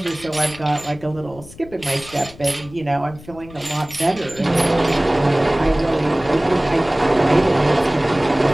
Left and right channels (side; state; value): left; noise; rumble, 20 dB below the sound